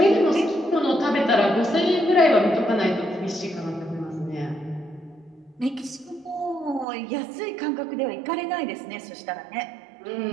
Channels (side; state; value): left; drops out; at 6.9 s